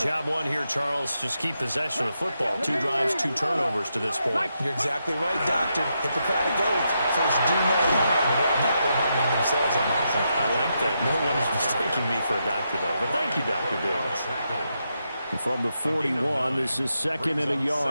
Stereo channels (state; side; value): inverted; both; correlation -0.83